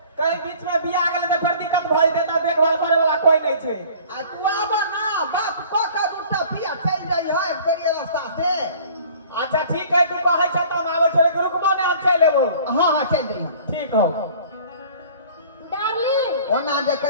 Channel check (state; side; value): inverted; both; correlation -0.49